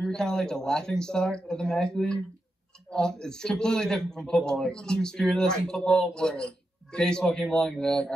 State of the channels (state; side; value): normal; both; correlation 0.87